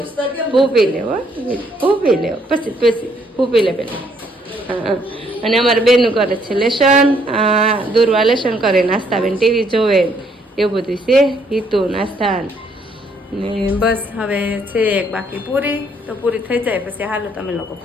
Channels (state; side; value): normal; both; correlation 0.68